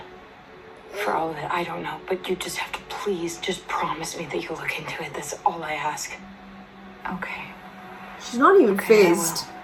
for all of it. I don't know. But you just have to please just promise me that you'll look into it. That's all I ask. Okay. She's not even Okay, I will. phased.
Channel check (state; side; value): identical; both; correlation 1.00